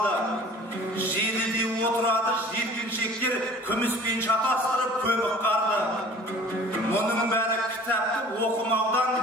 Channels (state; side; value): normal; both; correlation 0.46